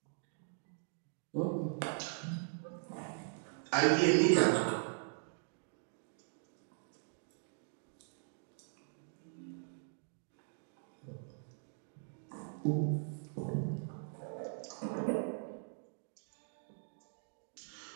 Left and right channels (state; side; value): silent; left; digital silence